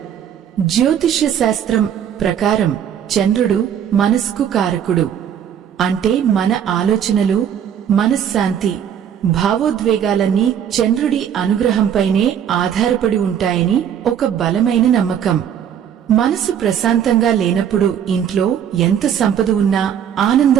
జ్యోతిష్య శాస్త్రం ప్రకారం చంద్రుడు మనస్కు కారకుడు. అంటే మన ఆలోచనలు, మనశ్శాంతి, భావోద్వేగాలన్నీ చంద్రుడి అనుగ్రహంపైనే ఆధారపడి ఉంటాయని ఒక బలమైన నమ్మకం. మనసు ప్రశాంతంగా లేనప్పుడు ఇంట్లో ఎంత సంపద ఉన్నా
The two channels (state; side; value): quieter; left; 9.0 dB